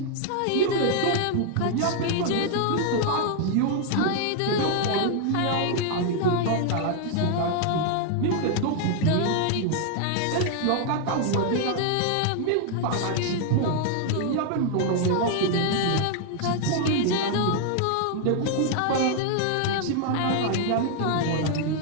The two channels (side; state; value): both; different; correlation 0.00